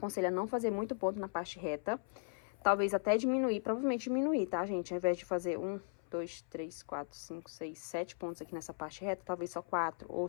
a não fazer muito ponto na parte reta. Talvez até diminuir, provavelmente diminuir, tá, gente? Ao invés de fazer 1, 2, 3, 4, 5, 6, 7 pontos aqui nessa parte reta, talvez só 4 ou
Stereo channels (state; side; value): silent; right; 53 dB below the other